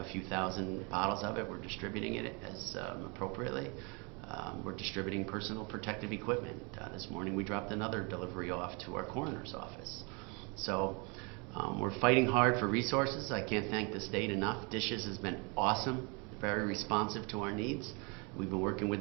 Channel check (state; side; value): quieter; left; 31.4 dB